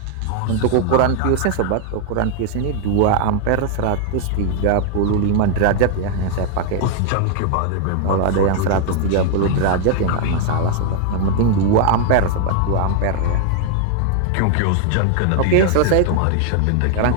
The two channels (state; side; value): different; both; correlation 0.00